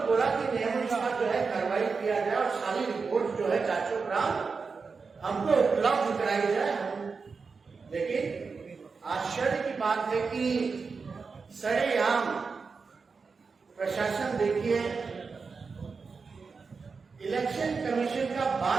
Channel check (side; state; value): left; quieter; 4.9 dB